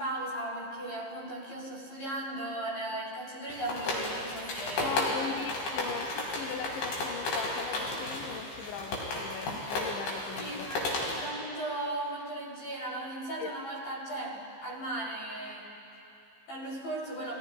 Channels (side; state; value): right; late; 15 ms